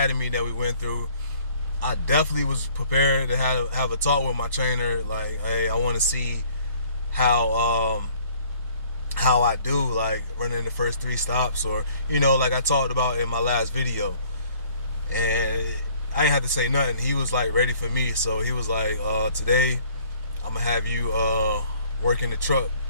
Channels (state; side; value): inverted; both; correlation -0.58